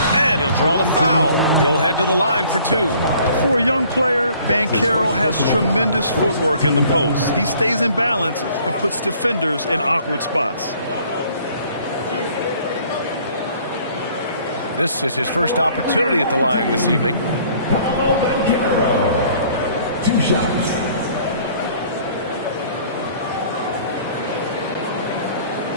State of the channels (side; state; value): both; inverted; correlation -0.56